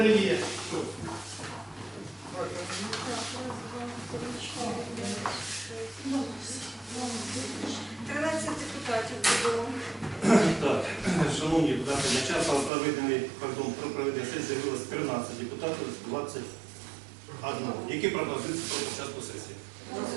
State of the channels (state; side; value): drops out; left; at 12.7 s